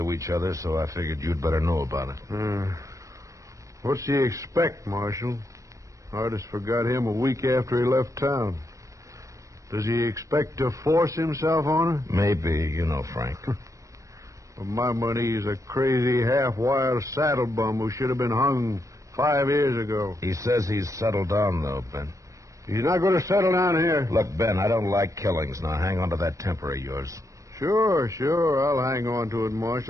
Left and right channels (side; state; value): left; late; 0.16 ms